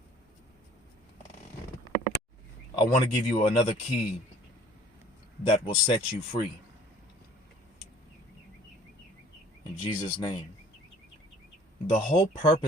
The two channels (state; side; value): normal; both; correlation 0.52